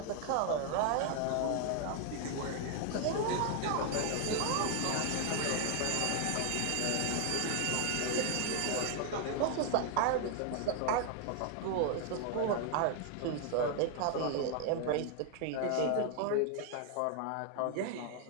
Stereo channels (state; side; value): different; both; correlation 0.00